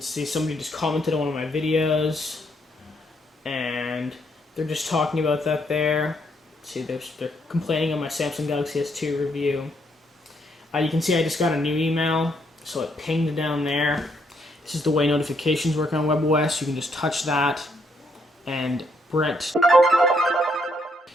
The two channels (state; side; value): normal; both; correlation 0.73